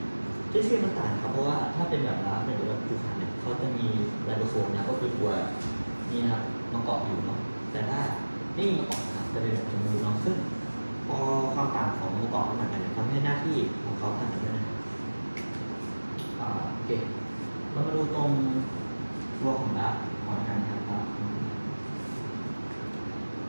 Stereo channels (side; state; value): both; inverted; correlation -1.00